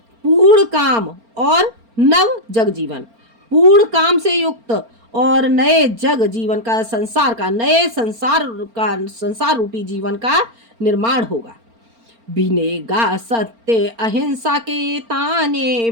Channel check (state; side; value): late; left; 4.4 ms